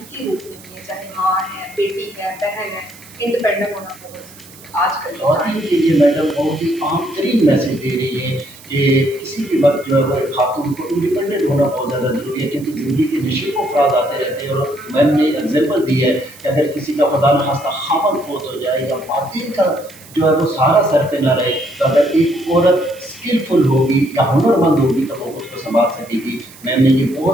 روپ میں ہے، چاہے ماں ہے، بیٹی ہے، بہن ہے، انڈیپینڈنٹ ہونا بہت ضروری ہے آج کل کے خواتین ٹائم. کے لیے میڈم بہت ہی عام ترین میسج دے رہی ہے کہ کسی بھی وقت جو ہے وہ ایک خاتون کو انڈیپینڈنٹ ہونا بہت زیادہ ضروری ہے، کیونکہ زندگی کے نشیب و افراد آتے رہتے ہیں. اور میم نے ایگزامپل دی ہے کہ اگر کسی کا خدا نخواستہ خامد فوت ہو جائے یا خواتین کا جو ہے وہ سارا سر پہ نہ رہے، تو اگر ایک عورت اسکلفل ہوگی یا ہنر مند ہوگی تو وہ خود کو سنبھال سکے گی. میم نے یہ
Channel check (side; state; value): right; noise; hiss, 21 dB below the sound